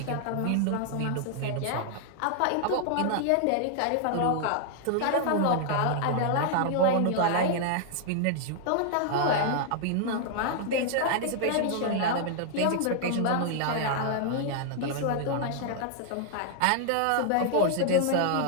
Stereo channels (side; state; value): both; different; correlation 0.00